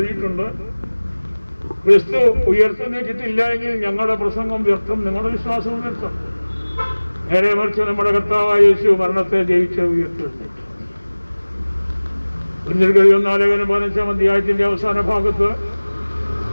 ക്രിസ്തു ഉയർത്തെഴുന്നേറ്റിട്ടില്ല എങ്കിൽ ഞങ്ങളുടെ പ്രസംഗം വ്യർത്ഥം, നിങ്ങളുടെ വിശ്വാസവും വ്യർത്ഥം. നേരെ മറിച്ച് നമ്മുടെ കർത്താവായ യേശു മരണത്തെ ജയിച്ച് ഉയർത്തെഴുന്നേറ്റു. 1 ലേഖനം 15-ാം അധ്യായത്തിന്റെ അവസാന ഭാഗത്ത്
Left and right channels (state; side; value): inverted; both; correlation -1.00